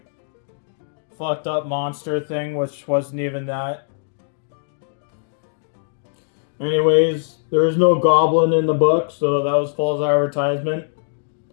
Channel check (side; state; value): right; silent; digital silence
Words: fucked up monster thing, which wasn't even that. Anyways, there was no goblin in the book, so that was false advertisement.